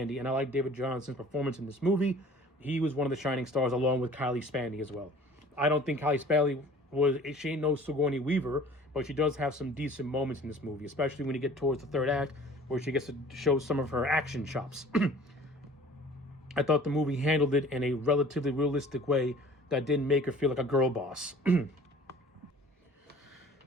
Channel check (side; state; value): both; normal; correlation 0.48